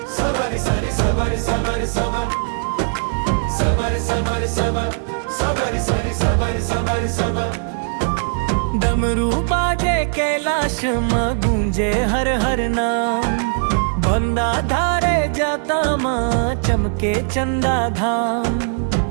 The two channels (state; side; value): silent; left; digital silence